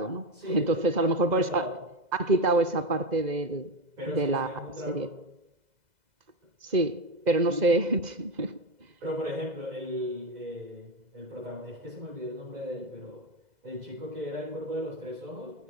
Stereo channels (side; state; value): left; late; 2.0 ms